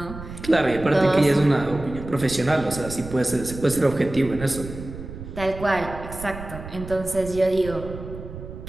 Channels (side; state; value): right; noise; rumble, 11 dB below the sound